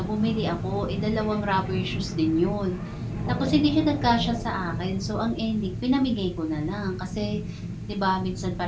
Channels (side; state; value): both; identical; correlation 1.00